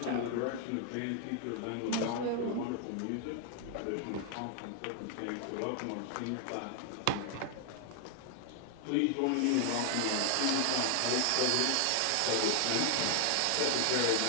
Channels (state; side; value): different; both; correlation 0.00